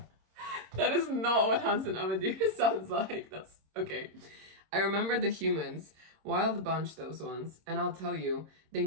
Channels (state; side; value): late; left; 26 ms